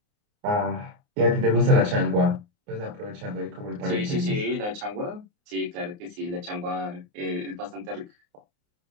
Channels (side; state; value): left; late; 29 ms